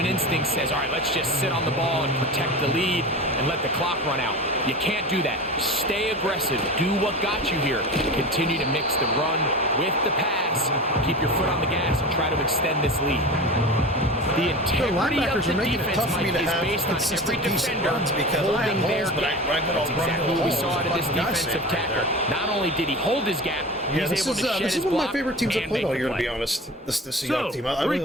instinct says, all right, let's just sit on the ball and protect the lead and let the clock run out. You can't do that. Stay aggressive. Do what got you here. Continue to mix the run with the pass. Keep your foot on the gas and try to extend this lead. The integrity of the defense, Mike, is based on every defender holding their gap. That's exactly what we saw out of this defensive tackle. Not only did he hold his gap, he's able to shed his block. This is one of my favorite teams I've played all year, to be honest. This Seahawks team. I really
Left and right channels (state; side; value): normal; both; correlation 0.31